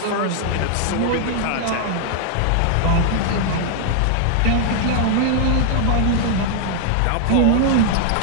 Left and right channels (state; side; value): different; both; correlation 0.00